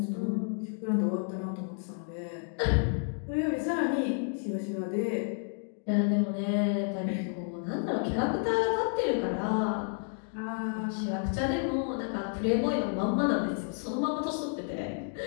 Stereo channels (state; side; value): silent; right; 57 dB below the other